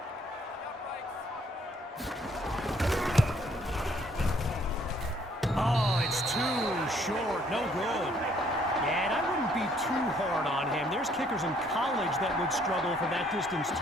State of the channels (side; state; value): both; normal; correlation 0.64